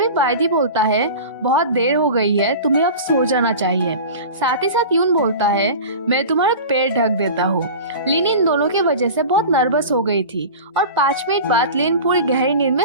बायडी बोलता है, बहुत देर हो गई है, तुम्हें अब सो जाना चाहिए। साथ ही साथ यून बोलता है, मैं तुम्हारे पैर ढक देता हूँ। लिन इन दोनों की वजह से बहुत नर्वस हो गई थी और 5 मिनट बाद लिन पूरी गहरी नींद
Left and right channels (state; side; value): inverted; both; correlation -0.34